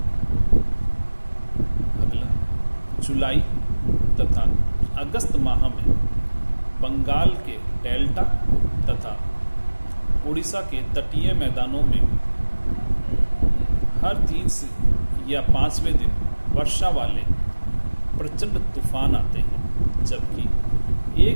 अगला, जुलाई तथा अगस्त माह में बंगाल के डेल्टा तथा उड़ीसा के तटीय मैदानों में हर 3 या 5वें दिन वर्षा वाले प्रचंड तूफान आते हैं, जबकि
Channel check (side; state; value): both; inverted; correlation -1.00